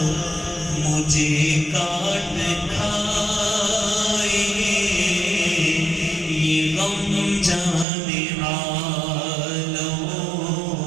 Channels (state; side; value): drops out; left; at 7.9 s